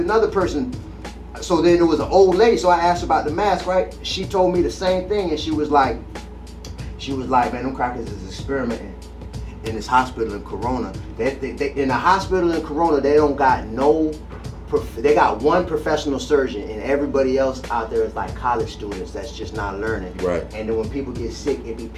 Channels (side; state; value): both; identical; correlation 1.00